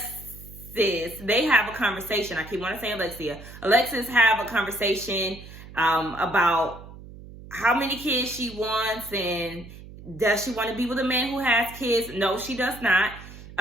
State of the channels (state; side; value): noise; right; hum, 16 dB below the sound